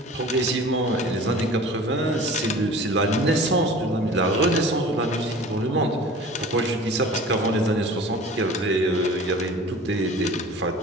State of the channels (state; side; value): normal; both; correlation 0.42